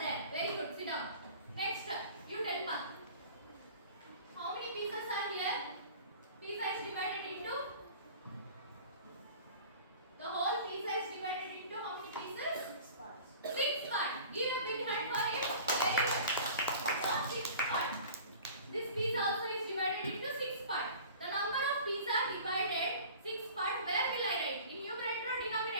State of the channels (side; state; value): both; inverted; correlation -0.43